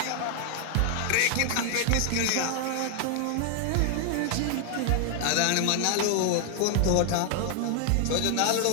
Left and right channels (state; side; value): different; both; correlation 0.00